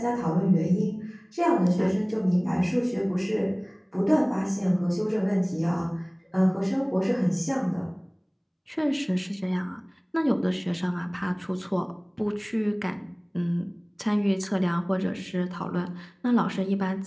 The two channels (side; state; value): both; identical; correlation 1.00